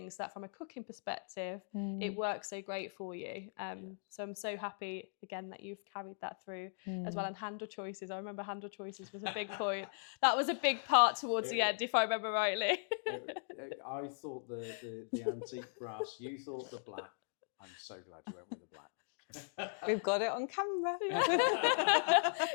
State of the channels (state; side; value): silent; right; digital silence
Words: So that from a cooking perspective, it works so great for you. So I'm so happy again that you've carried that through as well. And handle choices, I remember handle choices was a big point. That was a big part towards the end, if I remember rightly. I thought the antique brass, you thought the black. I'm so glad you went with the black. We've got it on camera.